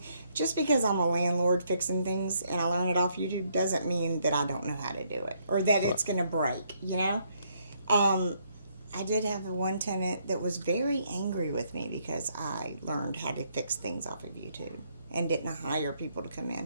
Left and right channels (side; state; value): both; inverted; correlation -0.72